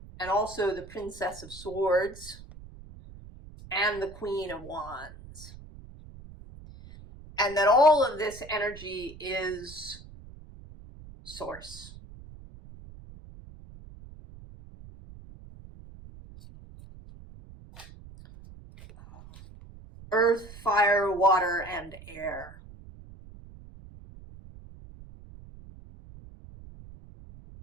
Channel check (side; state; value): right; noise; rumble, 17 dB below the sound